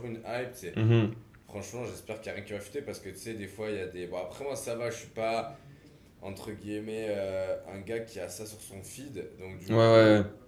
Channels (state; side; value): identical; both; correlation 1.00